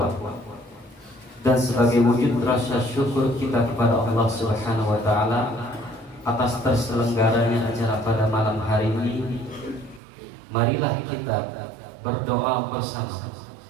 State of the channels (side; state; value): left; drops out; at 10.0 s